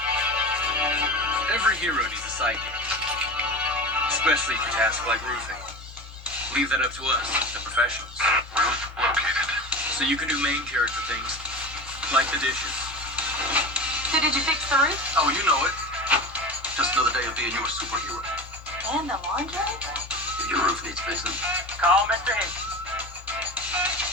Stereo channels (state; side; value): normal; both; correlation 0.30